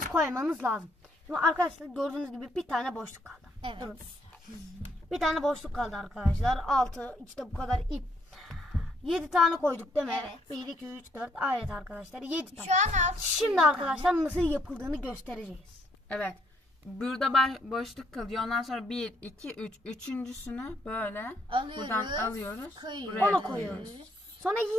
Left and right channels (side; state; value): both; normal; correlation 0.71